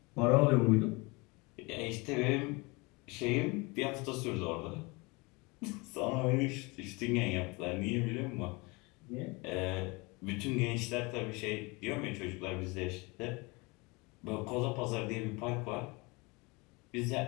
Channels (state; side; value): quieter; right; 26.4 dB